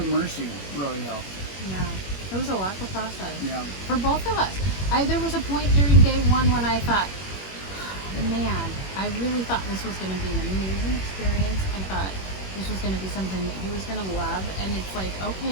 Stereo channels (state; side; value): late; right; 21 ms